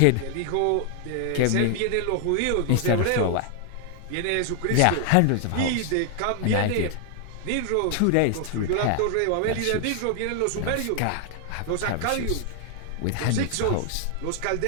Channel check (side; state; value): both; different; correlation 0.00